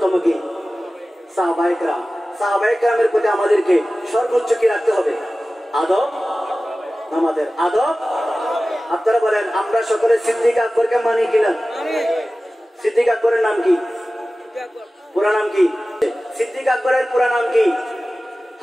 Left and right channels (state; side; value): normal; both; correlation 0.96